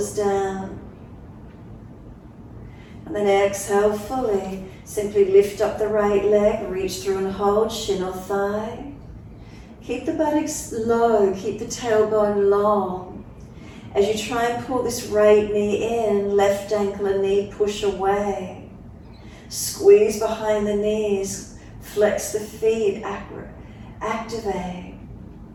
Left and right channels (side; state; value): both; identical; correlation 1.00